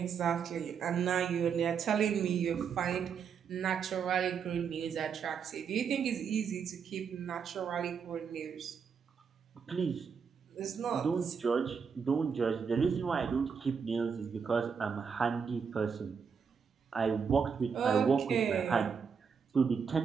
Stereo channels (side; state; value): left; quieter; 6.4 dB